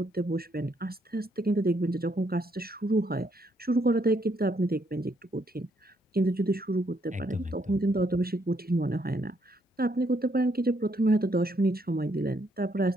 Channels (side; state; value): both; normal; correlation 0.73